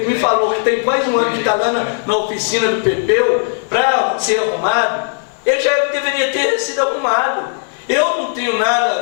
me falou que tem quase um ano que está lá na oficina do Pepeu para ser arrumado, ele já deveria ter sido arrumado. Eu não tenho nada a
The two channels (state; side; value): silent; right; 69 dB below the other